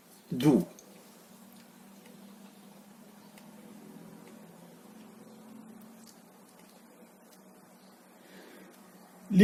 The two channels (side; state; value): both; identical; correlation 1.00